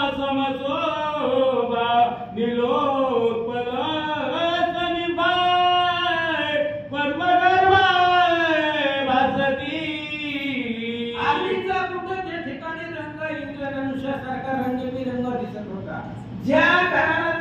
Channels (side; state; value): both; identical; correlation 1.00